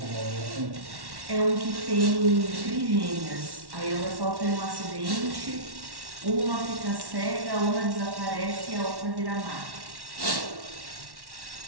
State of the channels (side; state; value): left; late; 1.1 ms